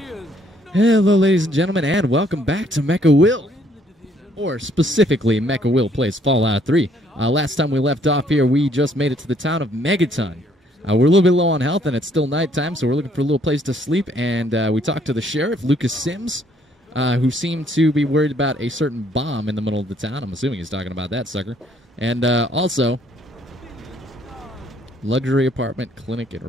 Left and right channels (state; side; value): normal; both; correlation 0.65